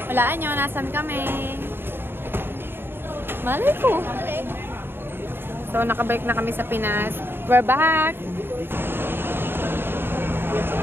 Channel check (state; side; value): late; left; 0.10 ms